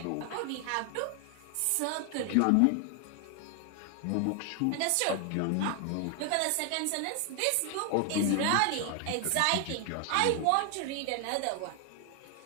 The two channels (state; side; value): different; both; correlation 0.00